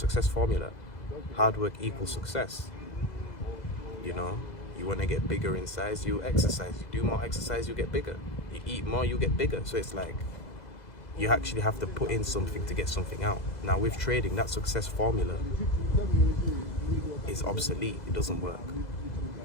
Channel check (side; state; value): right; late; 2.0 ms